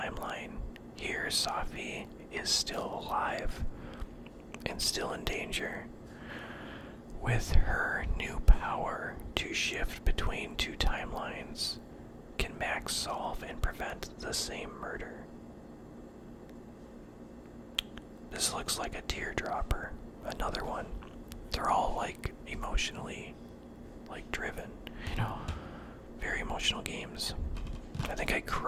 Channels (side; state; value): both; identical; correlation 1.00